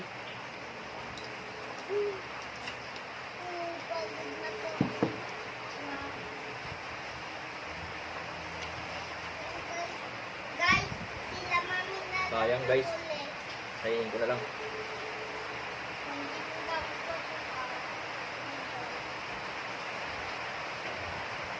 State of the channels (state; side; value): identical; both; correlation 1.00